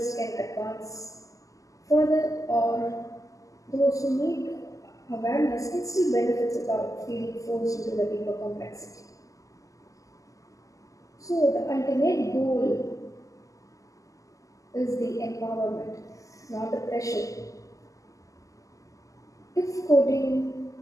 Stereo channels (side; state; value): right; late; 0.16 ms